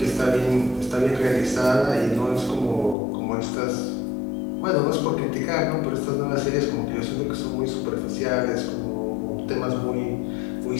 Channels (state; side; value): drops out; right; at 3.0 s